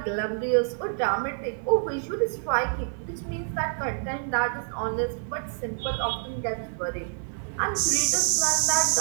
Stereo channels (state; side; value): silent; left; 60 dB below the other